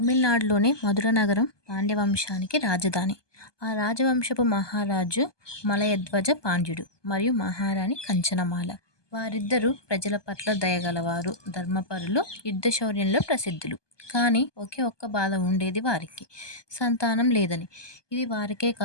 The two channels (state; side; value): late; right; 1.2 ms